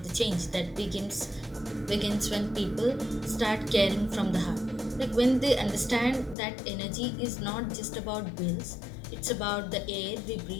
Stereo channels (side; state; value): right; drops out; at 6.4 s